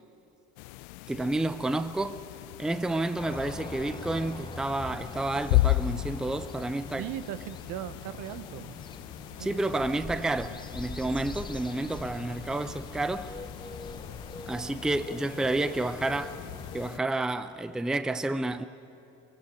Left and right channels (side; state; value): both; normal; correlation 0.66